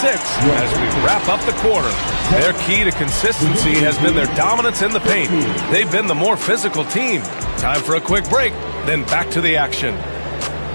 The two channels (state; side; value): inverted; both; correlation -1.00